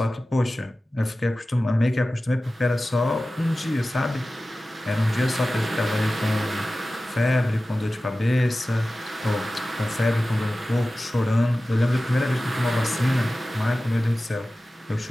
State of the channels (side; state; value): both; normal; correlation 0.96